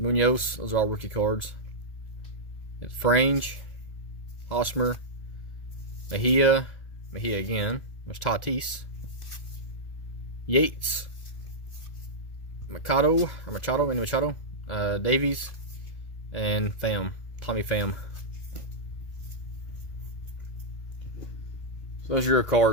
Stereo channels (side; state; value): right; late; 2.0 ms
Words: Those are all rookie cards. It's Frange, Hosmer, Mejia again. There's Tatis, Yates, Machado, Davies, and Tommy Pham. So those are your